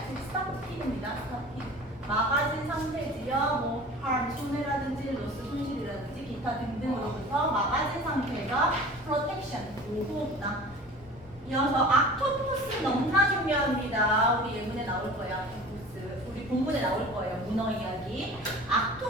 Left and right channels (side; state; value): left; noise; rumble, 21 dB below the sound